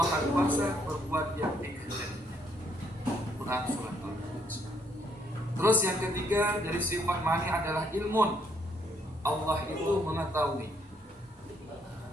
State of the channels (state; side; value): normal; both; correlation 0.70